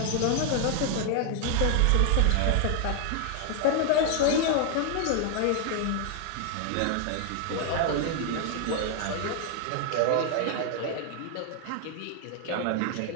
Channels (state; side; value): different; both; correlation 0.00